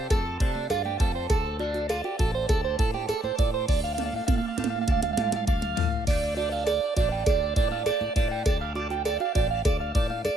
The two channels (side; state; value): both; normal; correlation 0.75